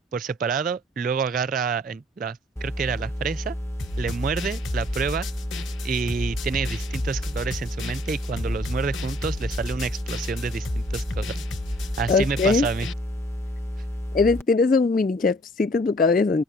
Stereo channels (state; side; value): normal; both; correlation 0.59